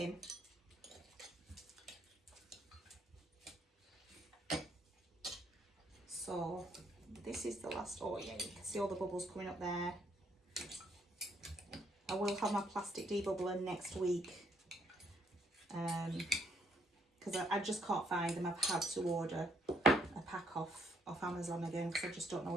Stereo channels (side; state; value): both; normal; correlation 0.69